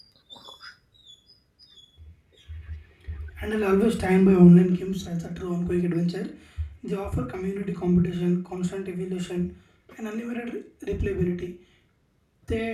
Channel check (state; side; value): identical; both; correlation 1.00